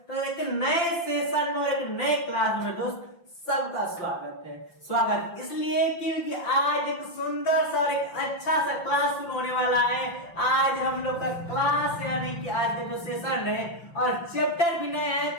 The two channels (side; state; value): right; late; 5.8 ms